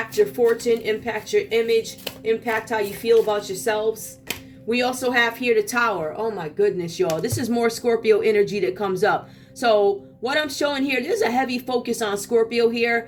your fortune, impact your image, impact how you feel about yourselves. We also have here the Tower. Oh my goodness, y'all. This is more Scorpio energy that comes up. So what I'm showing here, there's a heavy focus on Scorpio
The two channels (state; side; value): identical; both; correlation 1.00